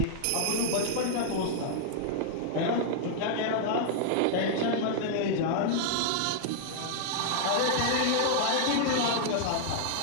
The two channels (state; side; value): different; both; correlation 0.00